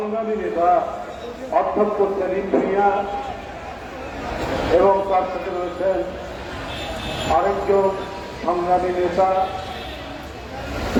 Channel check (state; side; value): identical; both; correlation 1.00